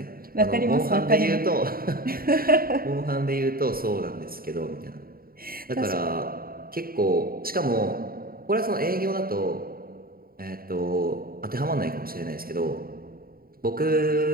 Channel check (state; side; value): late; left; 0.43 ms